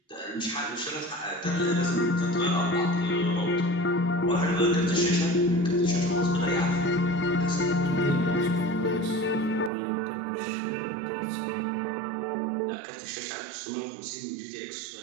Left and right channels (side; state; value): left; drops out; at 9.7 s